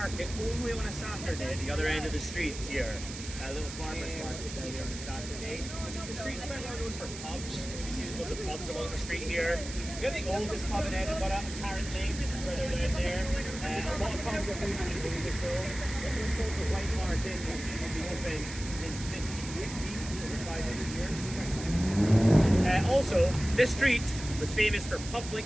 only on a Saturday at the other end of the street here. A little farmer's market down there on a Saturday. The street's quite well known for pubs. You see there's lots of pubs along the street here. We have the oldest pub in Edinburgh, apparently, further down there. A lot of pubs are really full. This one's called the White Hart Inn, which has been open since 1560, over 500 years. Also, this street was famous for public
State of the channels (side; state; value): right; noise; hiss, 11 dB below the sound